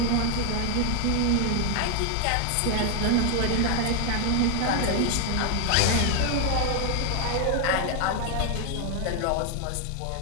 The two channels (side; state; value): both; different; correlation 0.01